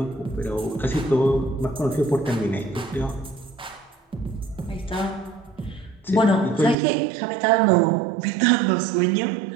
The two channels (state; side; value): drops out; left; at 6.8 s